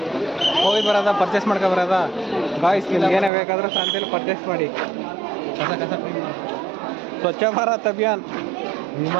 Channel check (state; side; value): drops out; left; at 3.3 s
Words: ಹೋಗಿ ಬರೋದ, ಪರ್ಚೇಸ್ ಮಾಡ್ಕೊ ಬರೋದ. ಗಾಯ್ಸ್, ನಿಮ್ಗೆ ಏನೇ ಬೇಕಾದರೂ ಸಂತೆಯಲ್ಲಿ ಪರ್ಚೇಸ್ ಮಾಡಿ. ಕಸ ಸ್ವಚ್ಛ ಭಾರತ್ ಅಭಿಯಾನ್.